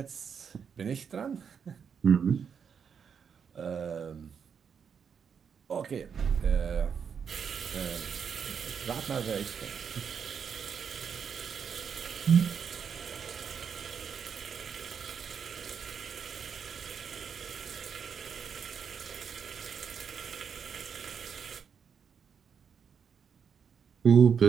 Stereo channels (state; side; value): quieter; left; 6.9 dB